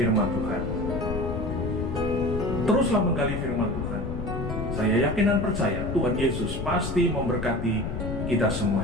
Tuhan. Teruslah menggali firman Tuhan. Saya yakin dan percaya Tuhan Yesus pasti memberkati kita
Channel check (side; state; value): left; noise; rumble, 4 dB below the sound